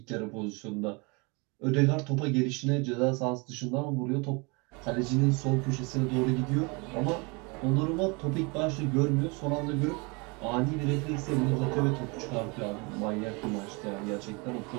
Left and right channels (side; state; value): left; quieter; 29.4 dB